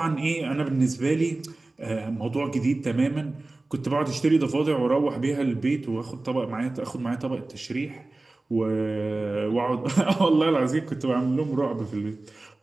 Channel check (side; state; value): left; quieter; 3.1 dB